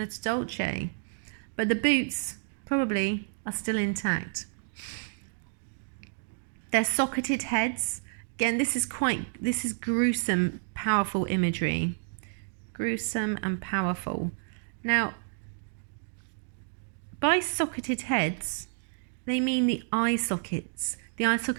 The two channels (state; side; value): silent; left; digital silence